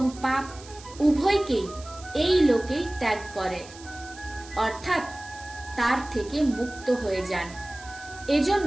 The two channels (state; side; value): noise; right; hiss, 19 dB below the sound